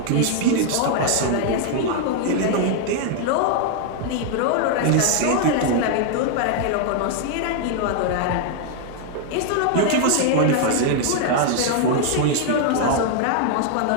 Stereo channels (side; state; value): both; different; correlation 0.00